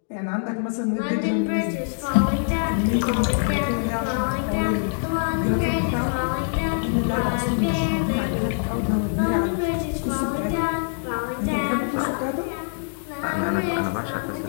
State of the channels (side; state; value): right; silent; digital silence